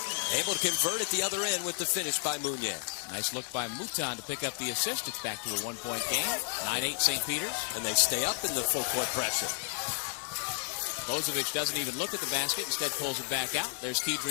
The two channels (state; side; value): silent; right; digital silence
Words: able to convert at the other end with the finish by Muñez. Nice look by Mouton to pick up the assist. It's back to a 1-point game. 9-8 St. Peter's. And they stay up in the full-court pressure. Bozovic doesn't even look at the basket. Instead pulls it back out. There's